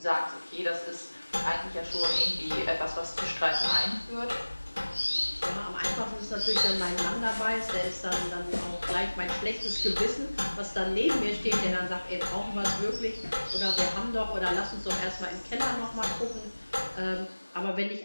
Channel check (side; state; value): both; inverted; correlation -1.00